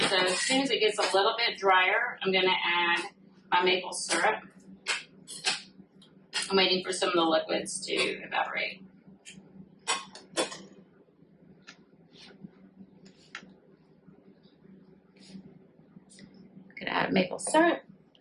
so as soon as it gets a little bit drier, I'm going to add my maple syrup. I'm waiting for some of the liquids to evaporate. I'm going to add maple syrup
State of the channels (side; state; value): both; identical; correlation 1.00